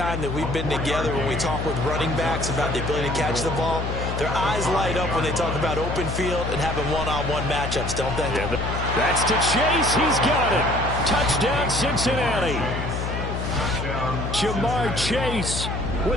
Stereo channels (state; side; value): noise; left; hum, 4 dB below the sound